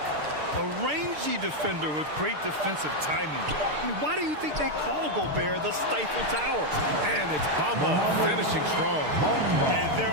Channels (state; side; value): late; left; 6.6 ms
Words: A rangy defender with great defensive timing. I mean, why do you think they call Gobert the Stifle Tower? And it's Bamba finishing strong. And their